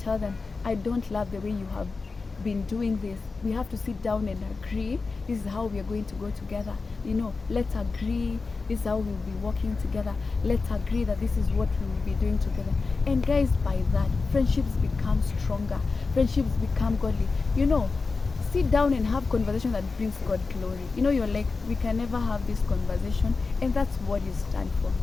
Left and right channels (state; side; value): quieter; right; 4.2 dB